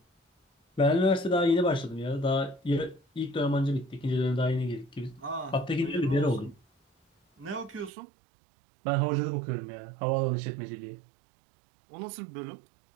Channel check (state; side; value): drops out; left; at 7.9 s